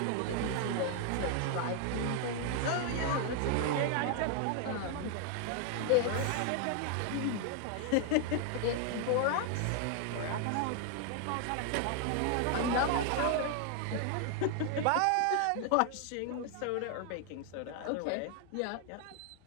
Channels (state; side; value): different; both; correlation 0.00